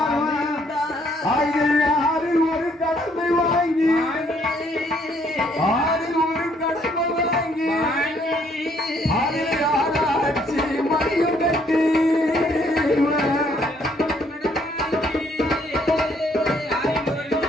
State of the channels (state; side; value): normal; both; correlation 0.66